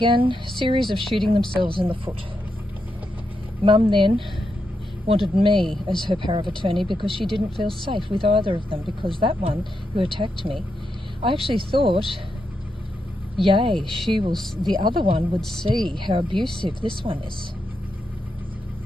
a series of shooting themselves in the foot. Mum then wanted me as her power of attorney because she didn't feel safe with either of them, because that one who attacked me, I actually thought, yay, the other one would see how abusive this one is.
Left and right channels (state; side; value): normal; both; correlation 0.84